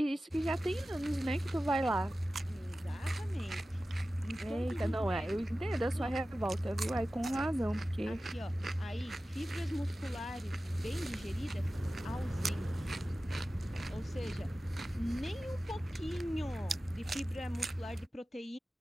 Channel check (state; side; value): normal; both; correlation 0.95